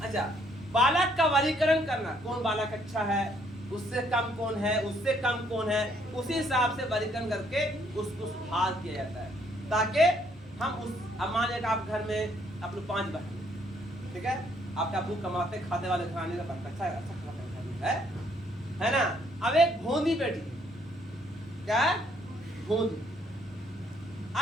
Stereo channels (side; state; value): both; normal; correlation 0.68